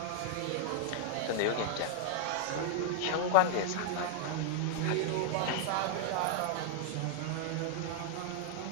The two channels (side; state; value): both; different; correlation -0.01